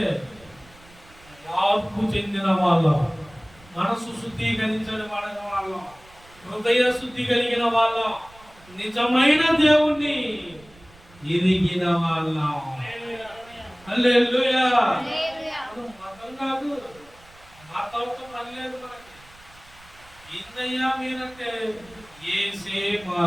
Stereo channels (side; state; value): right; noise; rumble, 25 dB below the sound